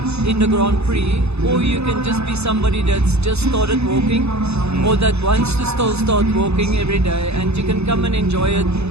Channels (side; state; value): left; late; 0.80 ms